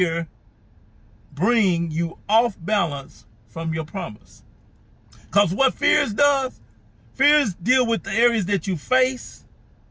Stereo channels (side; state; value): both; identical; correlation 1.00